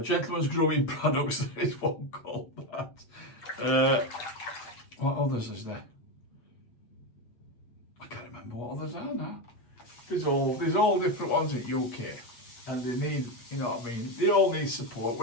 Gentleman's Grooming Products, there is one called that. What others is there? I can't remember what others are now. there's all different ones in UK, and they need, you know what I mean, they all need support.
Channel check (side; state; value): right; late; 8.4 ms